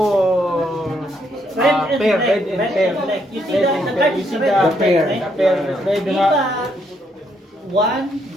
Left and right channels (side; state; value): both; normal; correlation 0.74